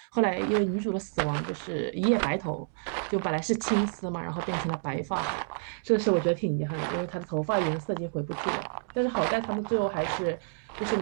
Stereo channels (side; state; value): left; silent; digital silence